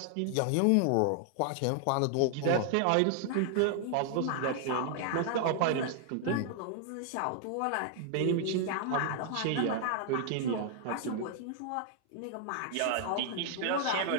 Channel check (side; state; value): both; different; correlation 0.00